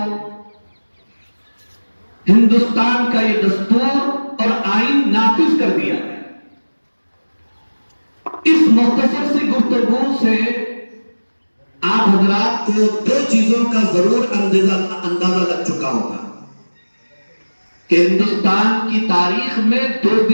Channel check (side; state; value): both; inverted; correlation -1.00